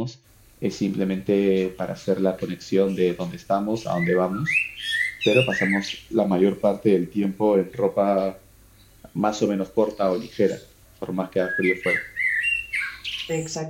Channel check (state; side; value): identical; both; correlation 1.00